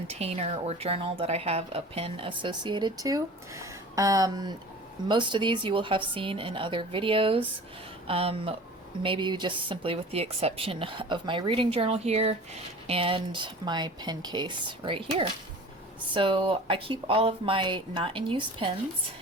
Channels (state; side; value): normal; both; correlation 0.41